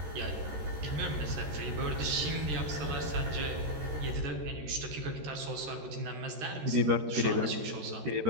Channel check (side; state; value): left; late; 13 ms